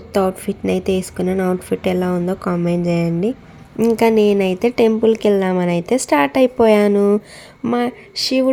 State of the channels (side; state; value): both; identical; correlation 1.00